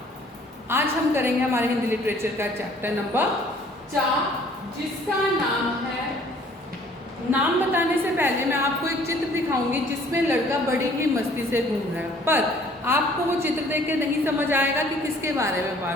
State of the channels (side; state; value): both; normal; correlation 0.56